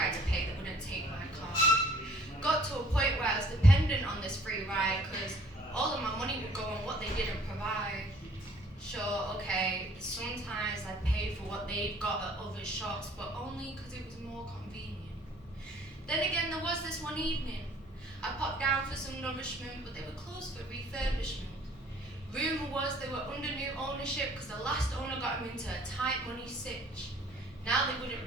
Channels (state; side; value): normal; both; correlation 0.57